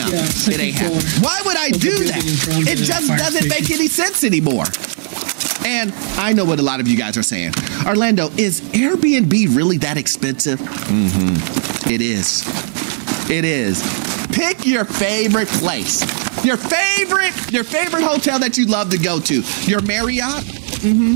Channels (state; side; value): silent; left; 68 dB below the other